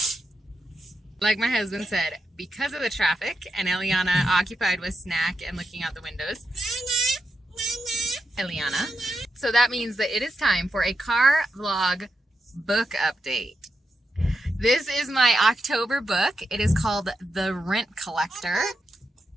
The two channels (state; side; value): normal; both; correlation 0.85